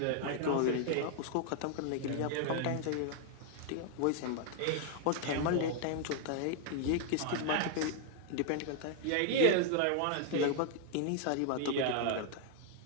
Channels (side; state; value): both; different; correlation 0.00